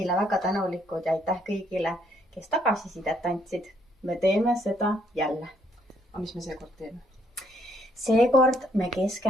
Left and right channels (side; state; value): both; normal; correlation 0.69